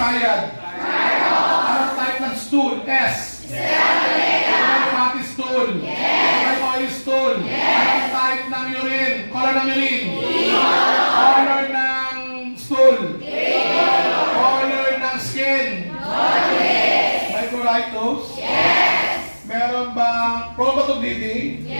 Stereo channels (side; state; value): both; inverted; correlation -1.00